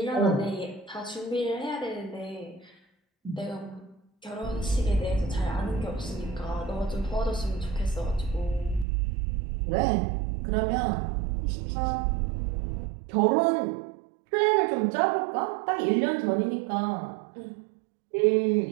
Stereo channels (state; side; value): drops out; left; at 8.8 s